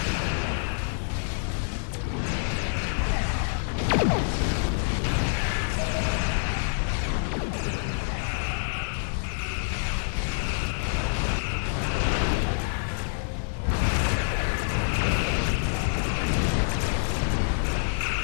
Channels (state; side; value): silent; right; digital silence